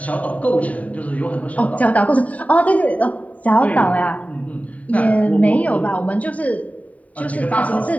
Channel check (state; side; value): late; right; 0.069 ms